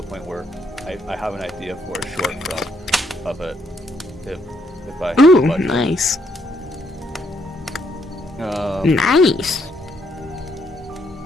point where I have an idea for a short film of it, if I have Ooh, the budget. nice. Um, Nice.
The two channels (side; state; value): both; normal; correlation 0.73